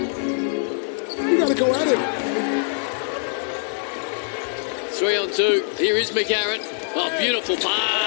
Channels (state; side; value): silent; right; 61 dB below the other